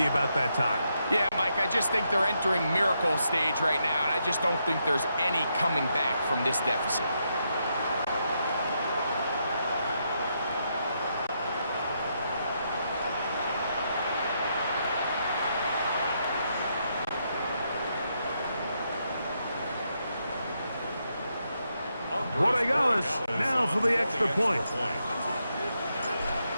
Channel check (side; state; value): both; inverted; correlation -0.80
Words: about that time. Yeah, Mike, I just think they're entering miracle stage right now, and I just don't think there's any coming back from this deficit. Rodriguez now for the extra point.